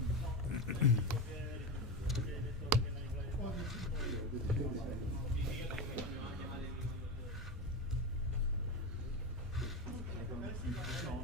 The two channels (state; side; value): normal; both; correlation 0.19